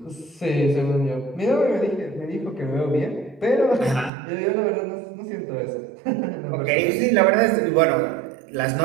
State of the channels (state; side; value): drops out; left; at 4.1 s